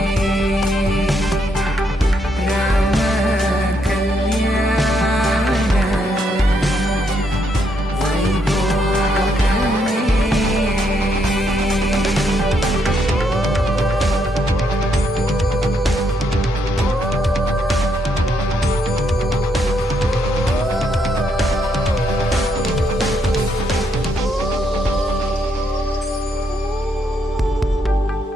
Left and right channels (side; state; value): both; normal; correlation 0.76